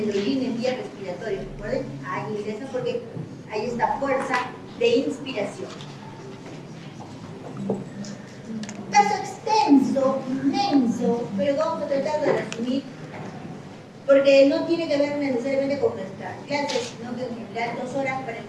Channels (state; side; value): identical; both; correlation 1.00